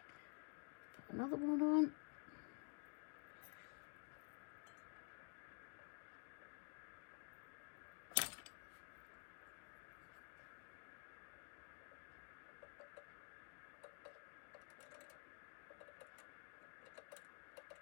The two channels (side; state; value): right; quieter; 37.9 dB